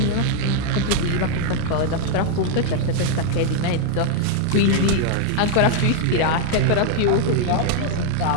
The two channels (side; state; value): both; different; correlation 0.00